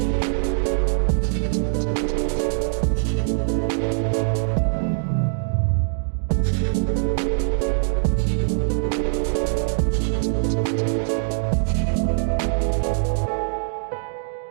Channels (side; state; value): left; silent; digital silence